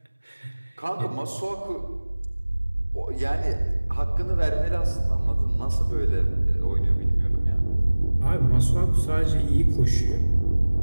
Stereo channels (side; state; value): both; inverted; correlation -1.00